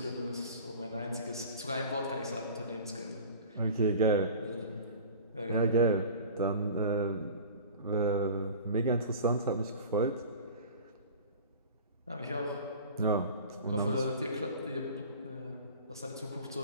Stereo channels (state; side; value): inverted; both; correlation -0.40